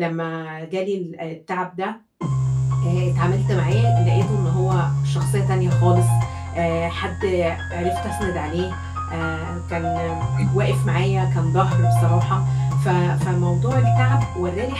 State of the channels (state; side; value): identical; both; correlation 1.00